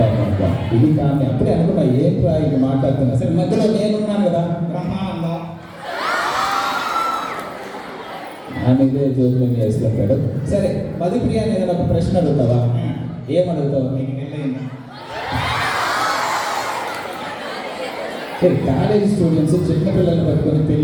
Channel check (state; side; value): identical; both; correlation 1.00